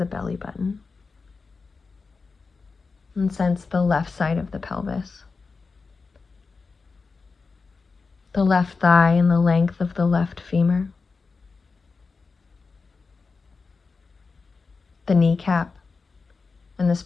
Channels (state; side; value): quieter; right; 4.5 dB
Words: belly button and sense the left side of the pelvis, the left thigh and the length of the left femur, the kneecap and the